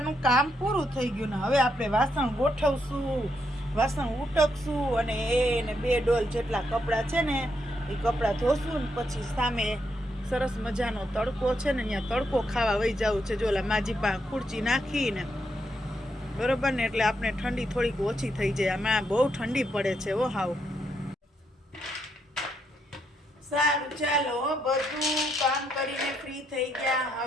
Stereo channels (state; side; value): normal; both; correlation 0.78